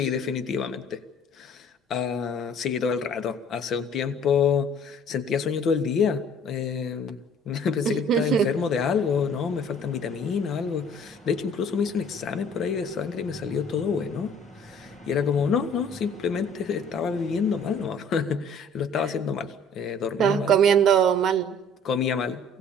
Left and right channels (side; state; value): both; normal; correlation 0.53